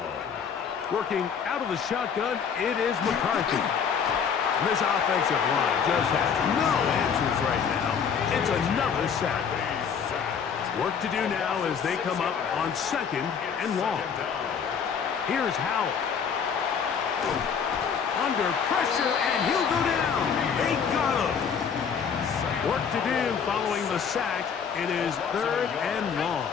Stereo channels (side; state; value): right; quieter; 6.9 dB